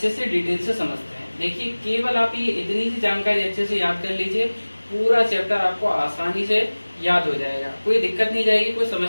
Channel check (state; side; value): inverted; both; correlation -1.00